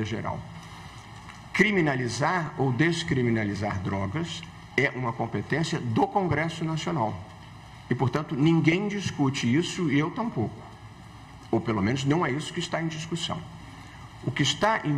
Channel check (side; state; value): both; identical; correlation 1.00